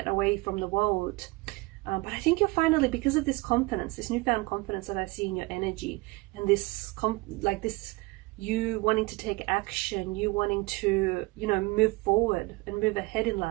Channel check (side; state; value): left; quieter; 23.3 dB